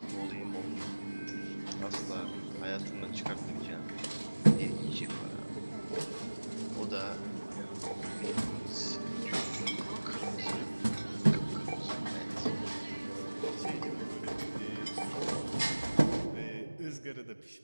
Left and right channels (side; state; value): both; inverted; correlation -1.00